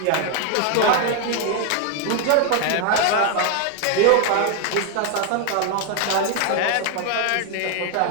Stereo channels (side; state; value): both; different; correlation 0.01